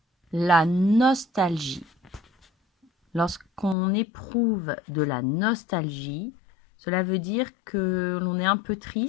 La nostalgie. Lorsqu'on éprouve de la nostalgie, cela veut dire que l'on est un peu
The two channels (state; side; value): drops out; right; at 3.8 s